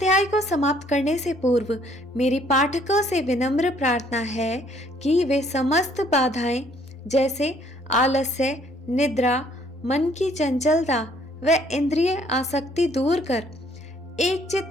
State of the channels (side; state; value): both; normal; correlation 0.63